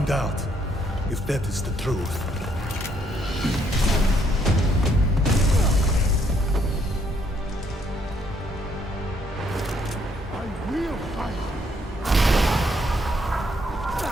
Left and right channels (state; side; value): normal; both; correlation 0.71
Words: out if that is the truth. I will fight.